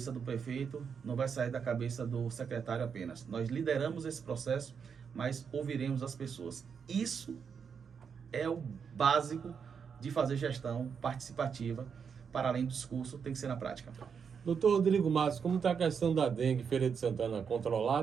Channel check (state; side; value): quieter; left; 6.6 dB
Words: do prefeito, não vai sair da cabeça do secretário apenas. Nós lideramos esse processo, mas ouviremos as pessoas. Isso é o básico de fazer gestão participativa. Para além do discurso, tem que ser na prática. Doutor Rodrigo Matos, como está a questão da dengue Feira de Santana